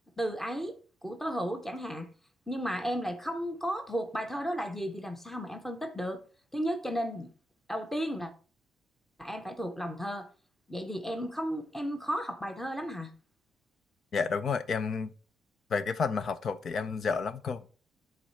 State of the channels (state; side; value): normal; both; correlation 0.84